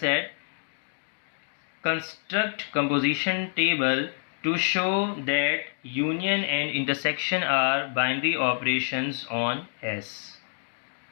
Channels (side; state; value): right; silent; 60 dB below the other